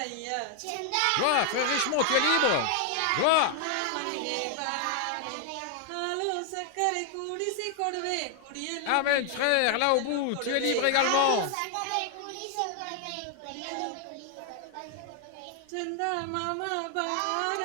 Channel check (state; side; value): different; both; correlation 0.00